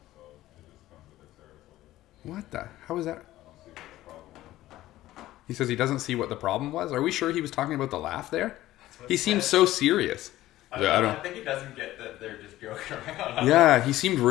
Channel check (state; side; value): quieter; right; 15.3 dB